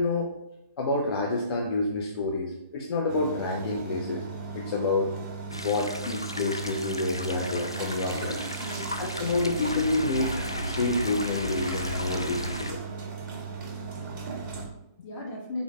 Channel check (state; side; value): inverted; both; correlation -0.54